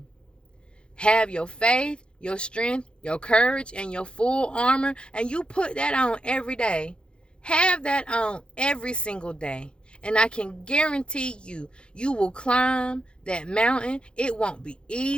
Have your faith, your strength, your courage, and your full armor, and you put that on every day. Have that on every single day. And I can guarantee you, you will climb that mountain. It won't be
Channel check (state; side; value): late; right; 0.054 ms